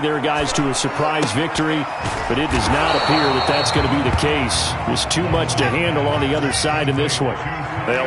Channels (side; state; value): both; identical; correlation 1.00